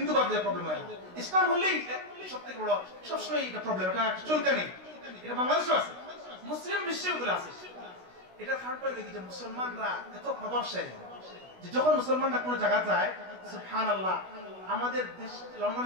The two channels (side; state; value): left; late; 16 ms